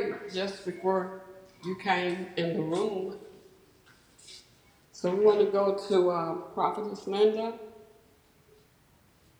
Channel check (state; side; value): identical; both; correlation 1.00